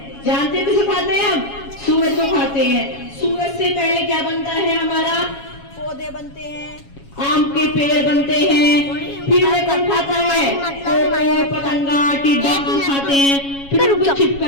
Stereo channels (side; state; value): right; late; 7.2 ms